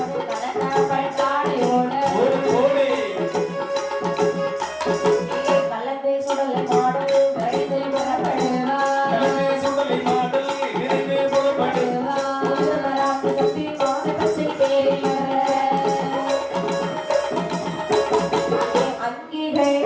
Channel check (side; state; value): both; identical; correlation 1.00